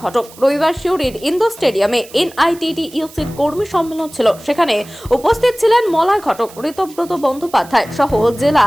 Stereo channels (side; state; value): right; noise; hiss, 21 dB below the sound